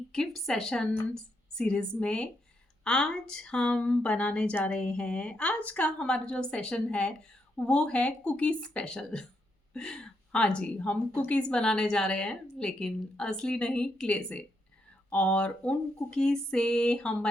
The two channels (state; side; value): normal; both; correlation 0.79